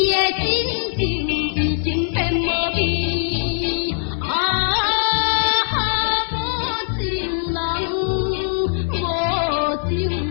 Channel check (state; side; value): silent; right; 62 dB below the other